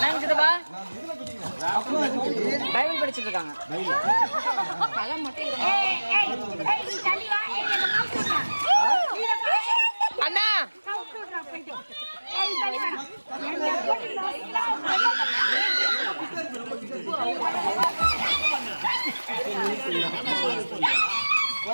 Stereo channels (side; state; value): both; inverted; correlation -1.00